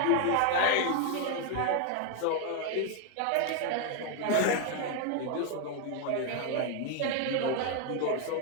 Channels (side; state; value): both; different; correlation 0.01